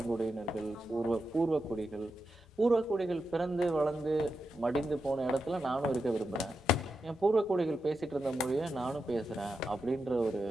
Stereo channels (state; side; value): normal; both; correlation 0.88